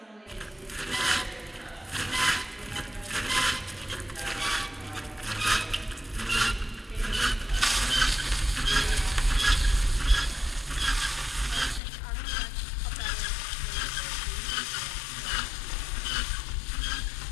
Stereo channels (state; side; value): drops out; right; at 11.8 s